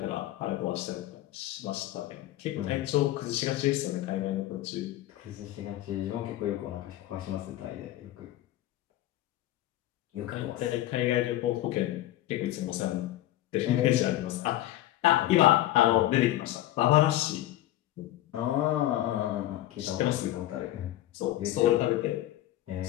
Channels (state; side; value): quieter; right; 14.8 dB